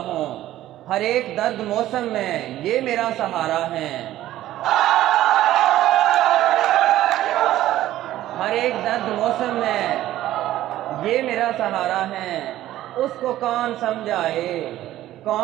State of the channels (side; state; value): left; quieter; 14.0 dB